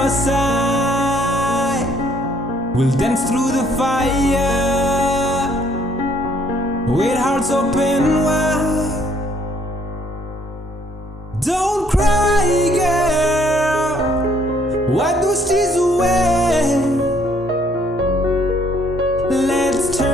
side. We'll dance through the fire with hearts open wide. Don't cry, girl, wipe those tears away. Let's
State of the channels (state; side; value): normal; both; correlation 0.64